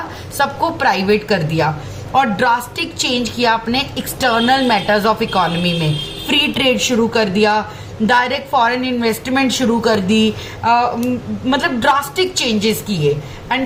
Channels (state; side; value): identical; both; correlation 1.00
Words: सबको प्राइवेट कर दिया, और ड्रास्टिक चेंज किया अपने एक्सटर्नल मैटर्स ऑफ इकोनॉमी में। फ्री ट्रेड शुरू कर दिया, डायरेक्ट फॉरेन इन्वेस्टमेंट शुरू कर दी, मतलब ड्रास्टिक चेंजेस किए।